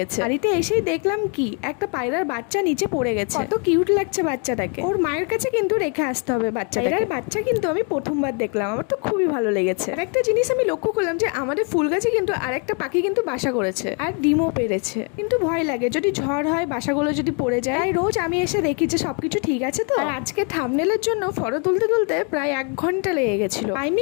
শাড়িতে এসেই দেখলাম কি একটা পায়রার বাচ্চা নিচে পড়ে গেছে। কত কিউট লাগছে বাচ্চাটাকে। ওর মায়ের কাছে কিন্তু রেখে আসতে হবে বাচ্চাটাকে। পায়রার বাচ্চা কিন্তু আমি প্রথমবার দেখলাম, আমার তো খুবই ভালো লেগেছে। আর একটা জিনিস আমি লক্ষ্য করলাম যে আমাদের ফুল গাছে কিন্তু আরেকটা পাখি কিন্তু বাসা করেছে আর ডিমও পেরেছে। কিন্তু ভয় লাগে যদি ঝড় হয়, বাসাগুলো যদি পড়ে যায়। তাই রোজ আমি এসে দেখি যে সবকিছু ঠিক আছে তো। আর আজকে থাম্বনেলের জন্য ফটো তুলতে তুলতে প্রায় 1 ঘন্টা লেগে গেছিল।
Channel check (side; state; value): right; quieter; 37.7 dB